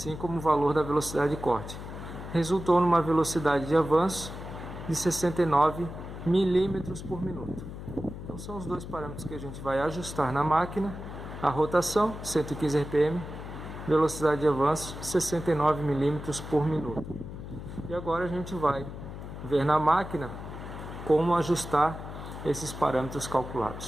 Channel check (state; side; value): noise; left; hum, 10 dB below the sound